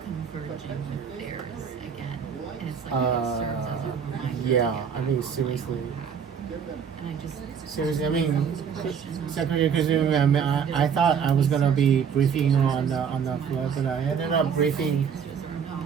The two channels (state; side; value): quieter; left; 7.1 dB